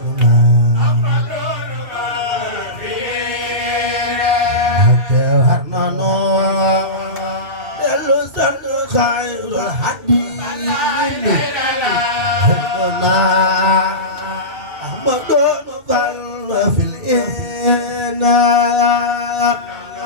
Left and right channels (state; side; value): late; left; 2.6 ms